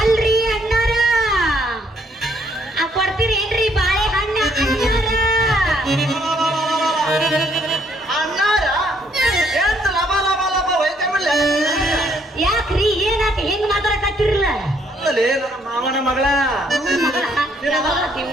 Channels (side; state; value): both; normal; correlation 0.68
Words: ಅಣ್ಣಾರ ಕೊಡ್ತೀರೇನ್ರಿ ಬಾಳೆಹಣ್ಣ ಅಣ್ಣಾರ ಎಂತ ಲಬ ಲಬ ಲಬ ಒಯ್ಕೊಂಡ್ಬಿಡ್ಲ? ಯಾಕ್ರಿ ಏನಾತ ಹೆಂಗ್ ಮಾತಾಡಕತ್ತಿರಲ್ಲ ಅಲ್ಲೇ ನನ್ನ ಮಾವನ ಮಗಳ